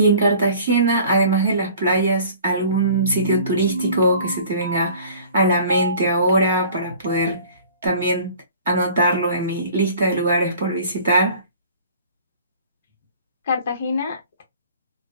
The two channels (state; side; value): inverted; both; correlation -0.48